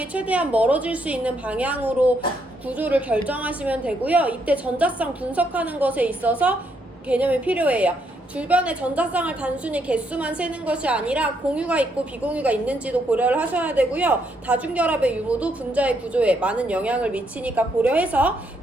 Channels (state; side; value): normal; both; correlation 0.75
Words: 최대한 멀어질 수 있는 방향으로 구조를 결정하시면 되고요. 이때 전자쌍 분석하는 것에 있어서 개념이 필요해요. 주변의 전자쌍을 단순히 개수만 세는 것이 아니라 공유가 있고 비공유가 있는지도 고려를 하셔야 되고요. 다중결합의 유무도 분자의 구조에 많은 영향을 미치니까 고려해서